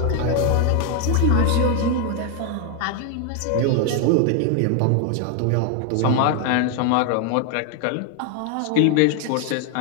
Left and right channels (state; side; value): different; both; correlation 0.01